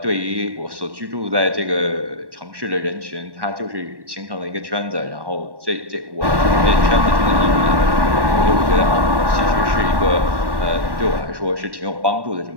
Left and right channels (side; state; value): left; late; 1.1 ms